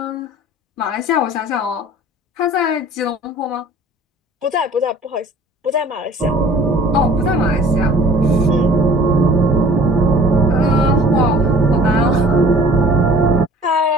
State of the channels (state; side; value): normal; both; correlation 0.49